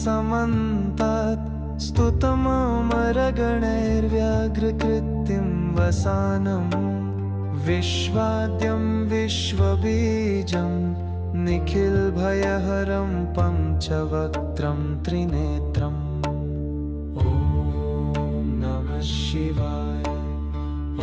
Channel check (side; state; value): both; identical; correlation 1.00